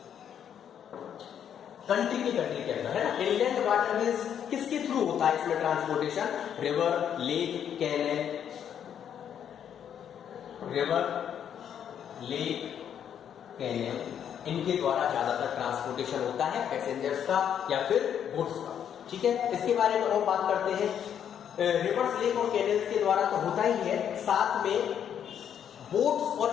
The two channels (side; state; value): right; quieter; 9.0 dB